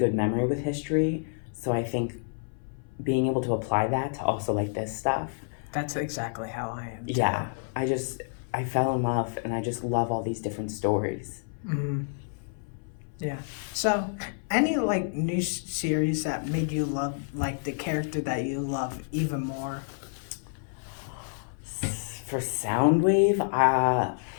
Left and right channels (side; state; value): right; silent; 57 dB below the other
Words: memory with history. So I think being able to apply that to also like this stuff, That's exactly how I am too. yeah, I fell in love, and I just love all these different stories. Mm, yeah. So, any like new series that made you love like the character that you love even more? For Soundwave,